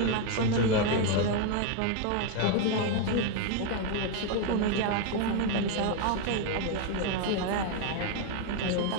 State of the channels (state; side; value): different; both; correlation 0.01